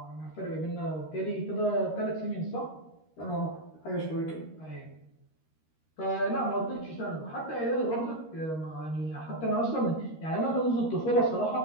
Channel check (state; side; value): late; right; 13 ms